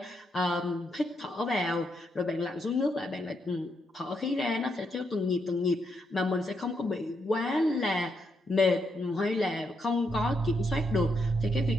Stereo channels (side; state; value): both; normal; correlation 0.79